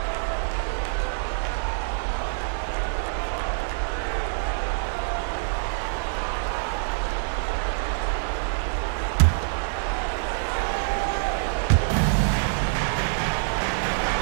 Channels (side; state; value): left; silent; 61 dB below the other